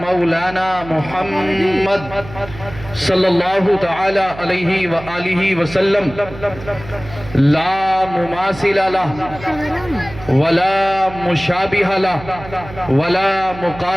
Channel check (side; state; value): right; noise; hum, 15 dB below the sound